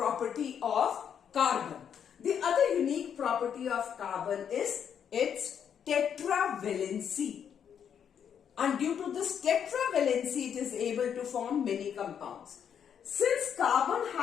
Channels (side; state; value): right; quieter; 8.2 dB